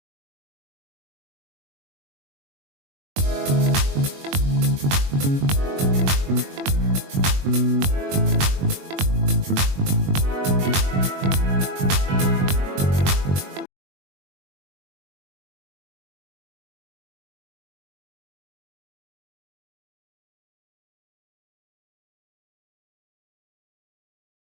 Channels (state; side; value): late; left; 21 ms